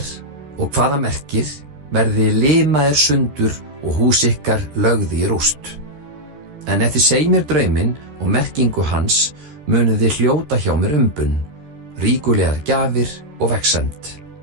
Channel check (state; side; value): late; left; 13 ms